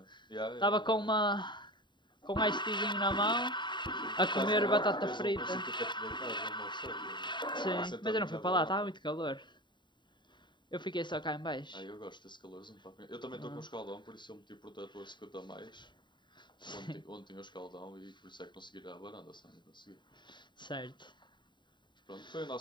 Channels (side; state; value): right; late; 0.22 ms